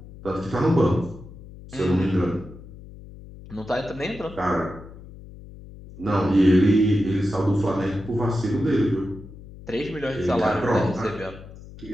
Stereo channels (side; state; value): left; noise; hum, 17 dB below the sound